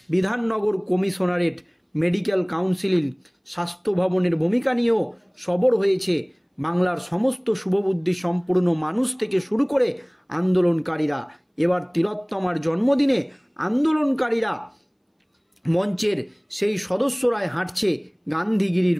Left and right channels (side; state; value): both; identical; correlation 1.00